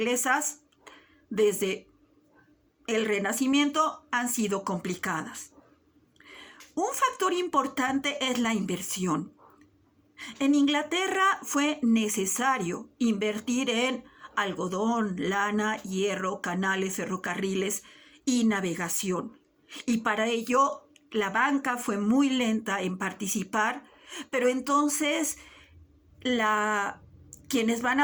desde el Renacimiento, han sido complicadas. Un factor importante es la inversión. En Inglaterra fue necesario invertir en algodón, lana, hierro, canales, ferrocarriles y navegación. Y para ello la banca fue muy lenta en participar, pero entonces quienes van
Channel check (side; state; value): both; identical; correlation 1.00